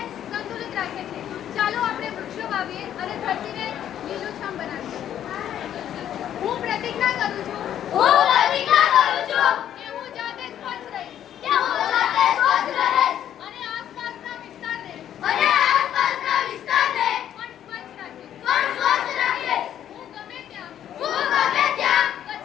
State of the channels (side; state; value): right; quieter; 10.5 dB